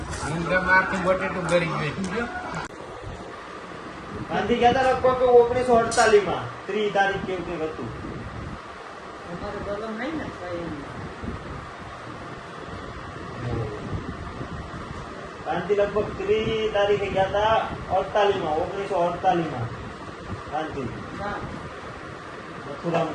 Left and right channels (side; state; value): both; identical; correlation 1.00